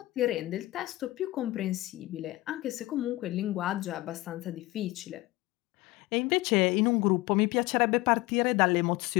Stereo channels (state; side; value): quieter; right; 19.3 dB